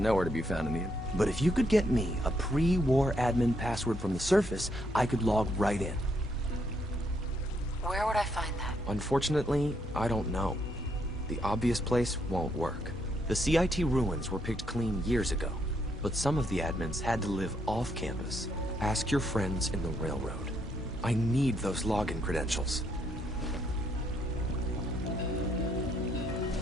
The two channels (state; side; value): normal; both; correlation 0.74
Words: to be found in the... But if you could get me a pre-war admin password from the surface, I could log right in. Where would I find that? Unfortunately, I don't know. The obvious place won't work. The CIT ruins were picked clean years ago, but some of the admins had to live off campus. Ask your friends in the railroad. I need those login credentials.